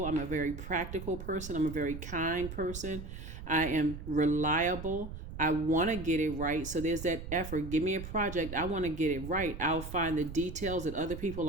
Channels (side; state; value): right; noise; rumble, 9 dB below the sound